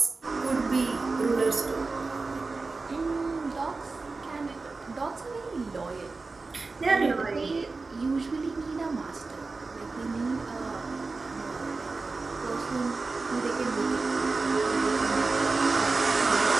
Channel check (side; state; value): left; quieter; 3.9 dB